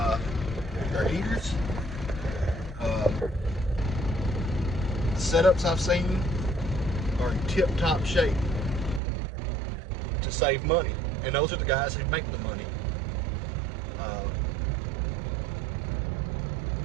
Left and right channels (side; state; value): left; drops out; at 9.0 s